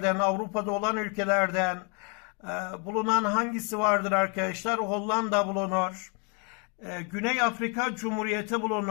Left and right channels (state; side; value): quieter; right; 36.0 dB